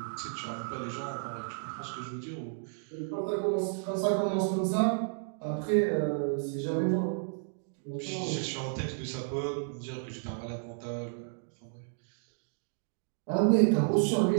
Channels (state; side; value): silent; left; digital silence